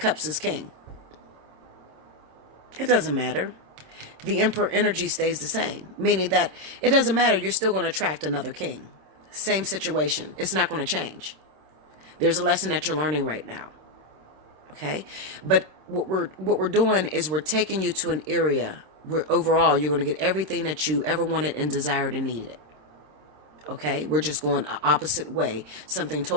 is King. It doesn't matter. The Emperor energy stays the same. Meaning that it doesn't matter. You're still going to attract another king. Same situation. It's not going to change. There's a lesson that you're learning right now. Okay? But what we're doing is we're taking you to an area where overall you're going to get everything that you ever wanted and desired and needed. Okay? We're just going an opposite way. Something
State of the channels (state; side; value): late; left; 26 ms